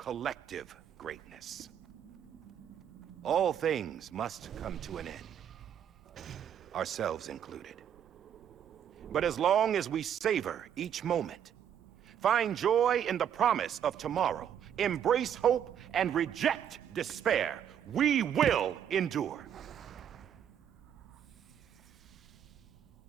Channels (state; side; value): quieter; left; 9.2 dB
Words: greatness. All things must come to an end, ourselves included. But as long as we savor each moment, find joy in the promise of tomorrow, embrace hope, and reject despair, we will endure.